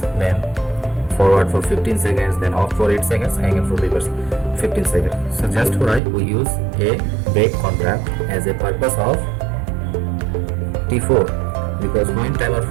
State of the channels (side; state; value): left; drops out; at 6.0 s